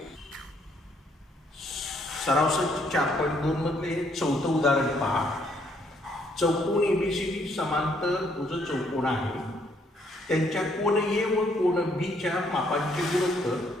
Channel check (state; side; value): normal; both; correlation 0.69